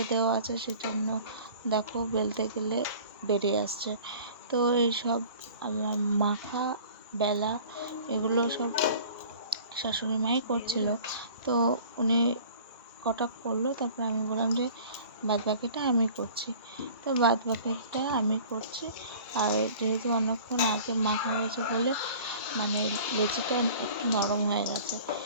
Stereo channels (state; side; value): inverted; both; correlation -0.46